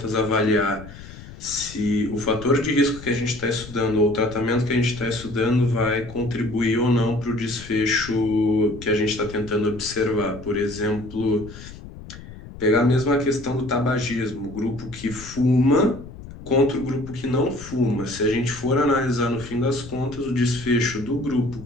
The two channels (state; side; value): noise; left; rumble, 15 dB below the sound